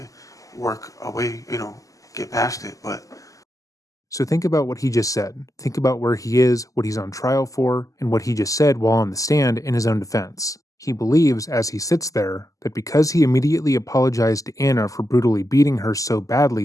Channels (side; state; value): right; late; 0.16 ms